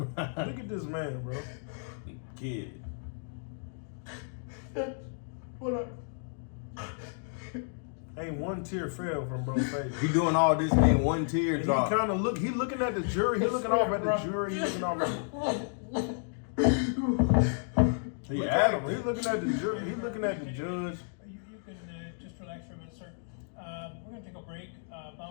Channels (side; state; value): right; silent; digital silence